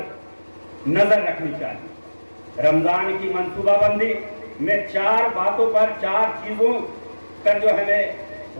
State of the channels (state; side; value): inverted; both; correlation -1.00